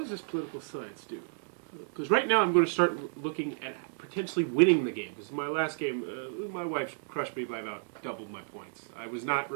this political science do? Because right now I'm going to start looking at potentially winning the game. Because my last game, my wife crushed me by about double my points. I was not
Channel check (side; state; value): left; silent; 57 dB below the other